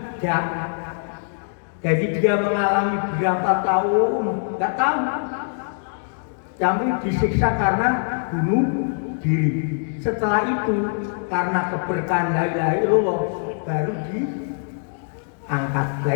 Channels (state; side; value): silent; right; digital silence